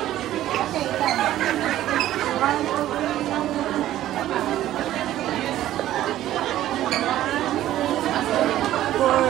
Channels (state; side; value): quieter; left; 13.4 dB